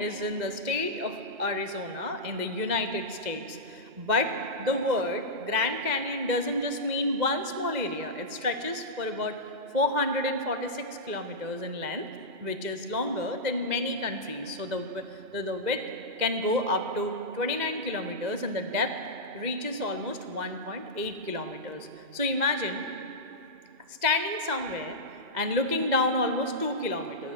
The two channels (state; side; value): late; left; 2.1 ms